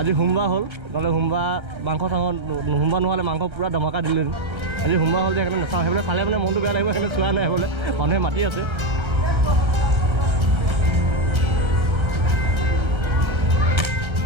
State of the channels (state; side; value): late; left; 1.3 ms